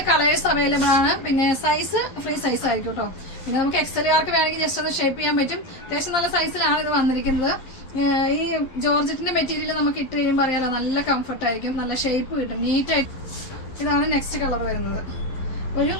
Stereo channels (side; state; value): right; late; 11 ms